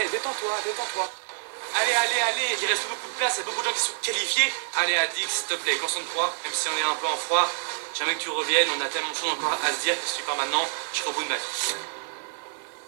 détends-toi. Allez, il reste beaucoup de place, il y a beaucoup de gens qui sont qualifiés. Allez, Adix, s'il te plaît, concentre-toi, même si on est un peu en froid. Jamais que tu reviennes, on a tellement de choses encore à se dire que si tu pars maintenant, je serai au bout de ma vie.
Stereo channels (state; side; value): silent; left; digital silence